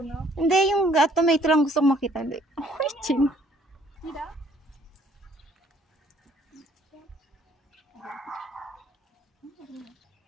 Hindi, yung tomato lang gusto kong makita. Hindi. Oh, chin. Tidak.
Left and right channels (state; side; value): normal; both; correlation 0.61